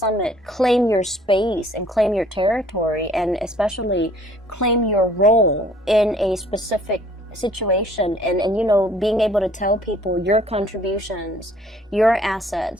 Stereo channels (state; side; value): normal; both; correlation 0.57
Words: claim your space and claim your territory, and especially claim your role in a specific situation, and being able to tell people your contributions, your